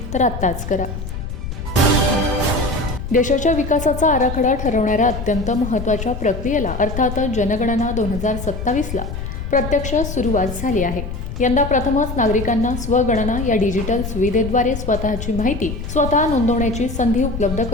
तर आत्ताच करा. देशाच्या विकासाचा आराखडा ठरवणाऱ्या अत्यंत महत्त्वाच्या प्रक्रियेला अर्थातच जनगणना 2027ला प्रत्यक्ष सुरुवात झाली आहे. यंदा प्रथमच नागरिकांना स्वगणना या डिजिटल सुविधेद्वारे स्वतःची माहिती स्वतः नोंदवण्याची संधी उपलब्ध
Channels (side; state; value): left; noise; rumble, 7 dB below the sound